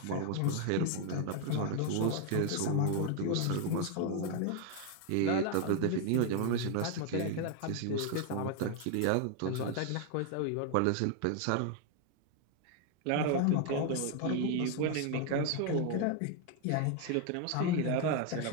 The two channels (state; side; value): different; both; correlation 0.01